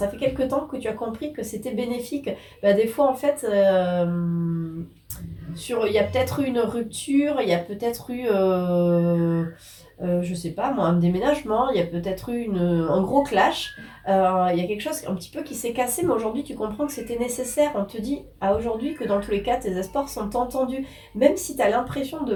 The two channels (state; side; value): identical; both; correlation 1.00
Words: fait quelque temps que tu as compris que c'était bénéfique. Bah, des fois, en fait, il y a peut-être eu une rupture, il y a peut-être eu, je sais pas moi, un déménagement, il y a peut-être eu un gros clash. Il y a quelque chose un petit peu qui s'est cassé, mais aujourd'hui tu comprends que c'était nécessaire. On te dit à aujourd'hui que dans tous les cas, tes espoirs sont entendus. Même si tu as l'impression